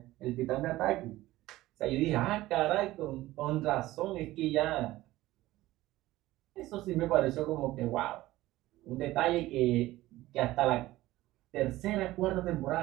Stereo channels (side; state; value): left; quieter; 16.9 dB